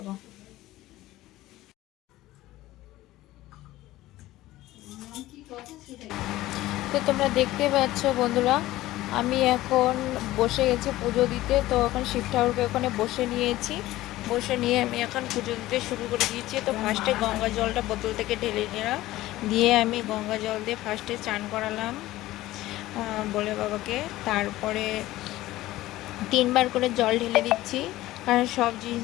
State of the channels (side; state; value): right; quieter; 16.4 dB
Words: তো তোমরা দেখতে পাচ্ছ বন্ধুরা, আমি এখন বসে গেছি পুজো দিতে। তো এখন শিব ঠাকুরকে ওখানে বসে নিয়েছি, বসে নিয়ে আমি এখন পুজো দিতে শুরু করে দিয়েছি। তো ফার্স্টে গঙ্গা জলটা বোতল থেকে ঢেলে নিলাম, দিয়ে আমি গঙ্গা জল দিয়ে ফার্স্টে চান করালাম বলে বাবাকে। তারপরে 3বার করে জল ঢেলে দিচ্ছি, কারণ সব